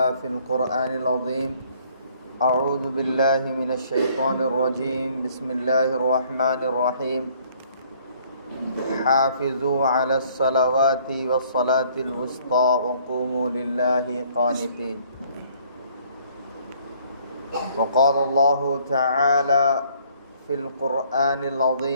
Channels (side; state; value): both; inverted; correlation -0.61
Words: في القرآن العظيم أعوذ بالله من الشيطان الرجيم بسم الله الرحمن الرحيم حافظوا على الصلوات والصلاة الوسطى وقوموا لله قانتين وقال الله تعالى في القرآن